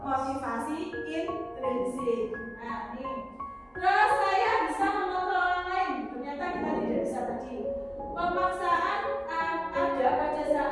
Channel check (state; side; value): identical; both; correlation 1.00